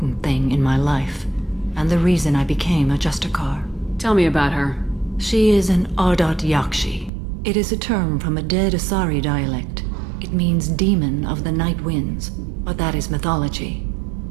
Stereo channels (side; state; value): left; drops out; at 7.1 s